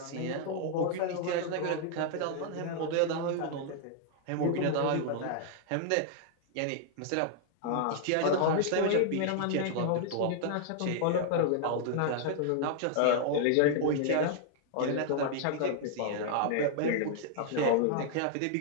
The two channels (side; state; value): both; different; correlation 0.00